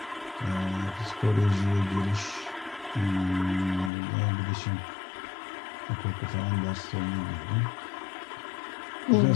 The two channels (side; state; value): right; drops out; at 3.9 s